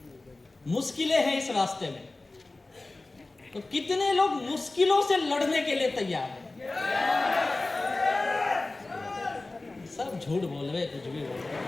मुश्किलें हैं इस रास्ते में। तो कितने लोग मुश्किलों से लड़ने के लिए तैयार हैं? सब झूठ बोल रहे, कुछ भी बोल रहे।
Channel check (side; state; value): right; quieter; 3.1 dB